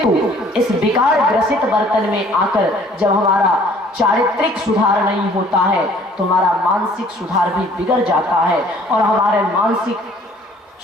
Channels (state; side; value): normal; both; correlation 0.56